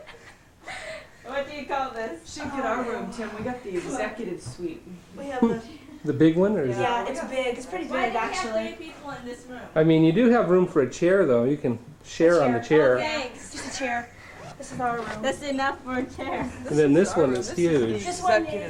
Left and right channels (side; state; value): both; identical; correlation 1.00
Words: What do you call this? Should get our room, Tim. We got the executive suite. We have the. The big one, or is Yeah, it's big. It's pretty Why big do we have actually. 3 people in this room? it? I mean, you do have room for a chair, though. You can share on the chair. Oh, thanks. Just a chair. This is our room. That's enough for a chair. And then this one is huge. This one